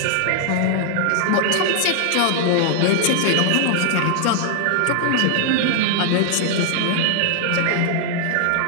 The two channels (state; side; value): different; both; correlation 0.00